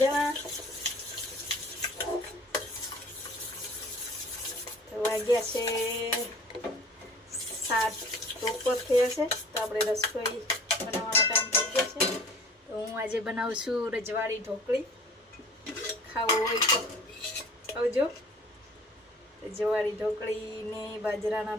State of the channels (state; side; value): normal; both; correlation 0.47